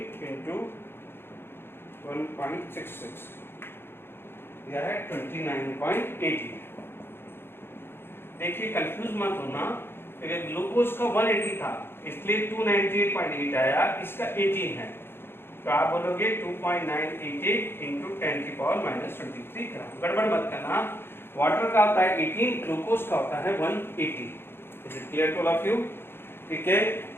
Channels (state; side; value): late; right; 0.11 ms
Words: into 1.66, यह है 29.80। देखिए कंफ्यूज मत होना, ग्लूकोज का 180 था इसलिए 298.8 आया, इसका 18 है, तो आप बोलोगे 2.988 into 10 की पावर -23 ग्राम। गड़बड़ मत करना, वाटर का होता है 18, ग्लूकोज का होता है 180। Is it clear to all of you? ठीक है,